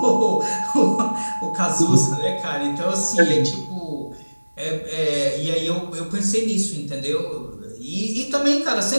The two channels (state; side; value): inverted; both; correlation -1.00